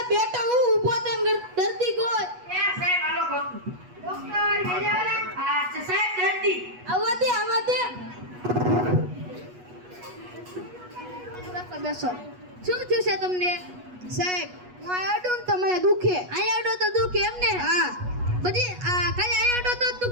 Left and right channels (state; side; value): late; left; 8.2 ms